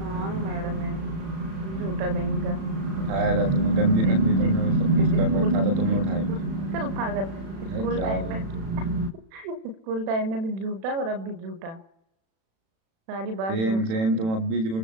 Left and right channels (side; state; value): left; late; 36 ms